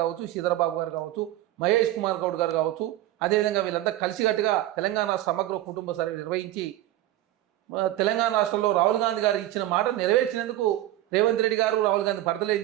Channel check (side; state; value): left; quieter; 14.6 dB